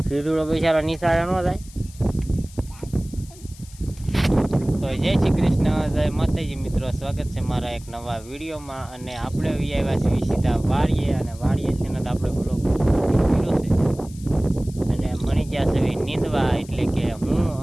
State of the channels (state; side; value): noise; left; hiss, 21 dB below the sound